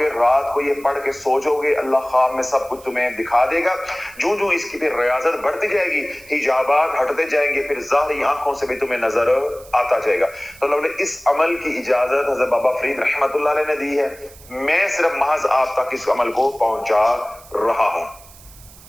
رات کو یہ پڑھ کے سو جاؤ گے, اللہ خواب میں سب کچھ تمہیں دکھا دے گا. جو جو اس کی پھر ریاضت بڑھتی جائے گی, حجابات ہٹتے جائیں گے, پھر ظاہری آنکھوں سے بھی تمہیں نظر آتا جائے گا. تو اللہ نے اس عمل کی اجازت حضرت بابا فرید رحمت اللہ علیہ نے دی ہے. میں صرف محض آپ تک اس عمل کو پہنچا رہا ہوں.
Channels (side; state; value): right; noise; hiss, 22 dB below the sound